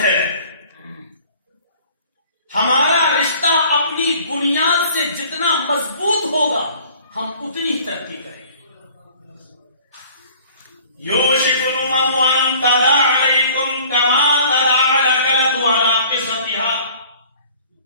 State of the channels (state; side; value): inverted; both; correlation -0.51